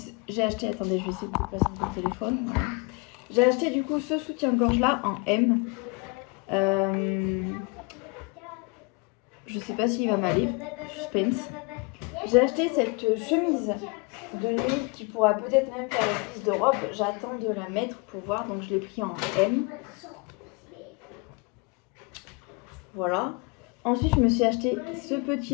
j'ai acheté, attendez je vais essayer de vous passer mon téléphone, voilà. J'ai acheté du coup ce soutien-gorge là en M, je sais pas s'il va m'aller, suspense. J'ai acheté cette chemise de nuit qui pourra peut-être même faire office de robe, j'attends de la mettre pour voir, donc je l'ai pris en M. Voilà. Ensuite, je me suis acheté ce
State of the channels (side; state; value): right; quieter; 30.5 dB